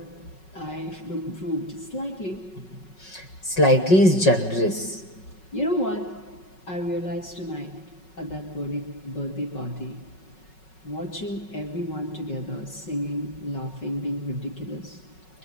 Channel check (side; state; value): right; late; 5.4 ms